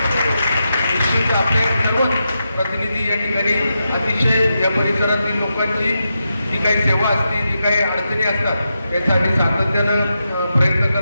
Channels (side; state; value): both; inverted; correlation -0.87